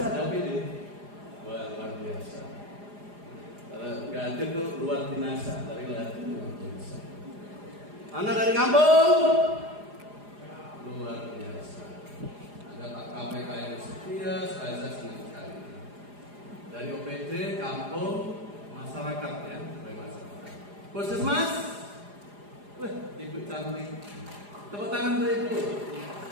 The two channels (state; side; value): late; left; 4.9 ms